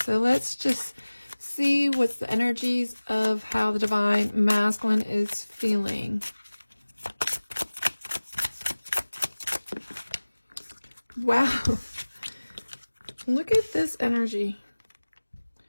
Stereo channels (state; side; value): inverted; both; correlation -1.00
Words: let's just see what's the energies of how the divine masculine is feeling. Wow, look at this energy.